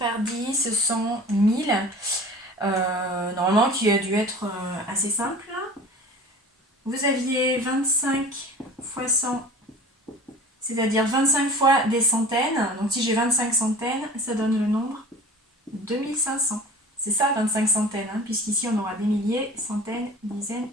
10, 100, 1000, normalement qui a dû être assez simple. Vous aviez 25 fois 100, c'est-à-dire 25 fois des centaines, donc si j'ai 25 centaines, ça donne le nombre 2500. C'est ça, 25 centaines, hein, puisqu'ici on aura des milliers, centaines, dizaines,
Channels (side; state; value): both; normal; correlation 0.40